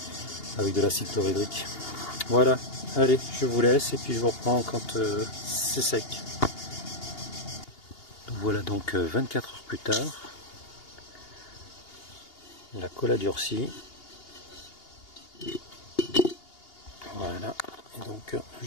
avec de l'acide chlorhydrique. Voilà, allez, je vous laisse et puis je vous reprends quand c'est sec. Voilà donc 24 heures plus tard. La colle a durci. Voilà, et donc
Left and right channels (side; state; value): right; late; 2.8 ms